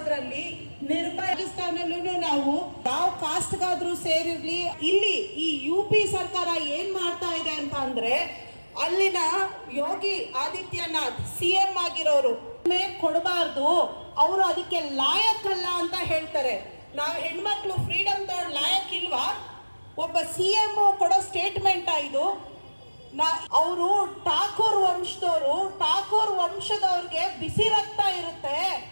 ನಿರ್ಭಯ. ರಾಜಸ್ಥಾನಲ್ಲೂ ನಾವು ಯಾವ ಕಾಸ್ಟ್ಗಾದ್ರೂ ಸೇರಿರ್ಲಿ, ಇಲ್ಲಿ ಈ UP ಸರ್ಕಾರ ಏನ್ ಮಾಡ್ತಾ ಇದೆ ಅಂತ ಅಂದ್ರೆ ಅಲ್ಲಿನ ಯೋಗಿ ಆದಿತ್ಯನಾಥ್ CM ಆಗಿರೋರು ಕೊಡಬಾರ್ದು, ಅವರು ಅದಕ್ಕೆ ಲಾಯಕ್ಕಲ್ಲ ಅಂತ ಹೇಳ್ತಾರೆ. ನಾವು ಹೆಣ್ಮಕ್ಳು ಫ್ರೀಡಮ್ ತಗೊಂಡು ಲಾಯಕ್ ಇಲ್ವಾ? ಒಬ್ಬ CM ಕೊಡೋ ಸ್ಟೇಟ್ಮೆಂಟ್ ಇದು. ಅವರು ಠಾಕೂರ್ ವಂಶದವರು, ಠಾಕೂರ್ ವಂಶದವ್ರಿಗೆ ಬಿಸಿ ರಕ್ತ ಇರುತ್ತೆ.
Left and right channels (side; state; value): both; inverted; correlation -1.00